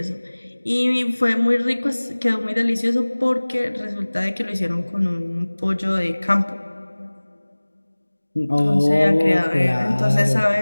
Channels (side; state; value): both; inverted; correlation -1.00